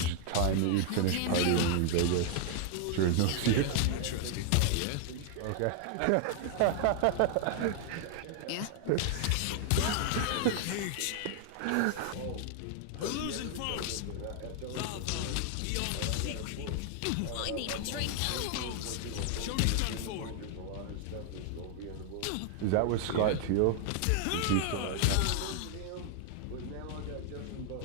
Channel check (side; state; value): both; different; correlation 0.00